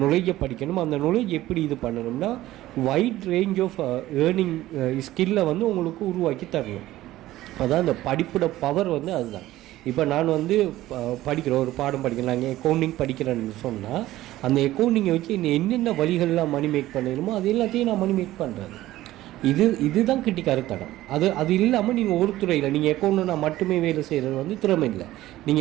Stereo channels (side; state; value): left; quieter; 15.6 dB